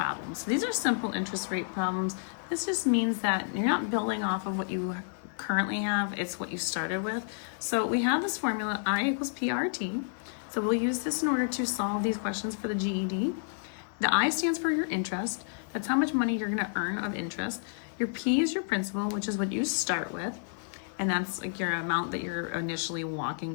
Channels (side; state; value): right; silent; digital silence